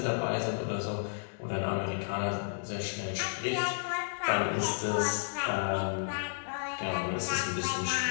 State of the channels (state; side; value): silent; right; digital silence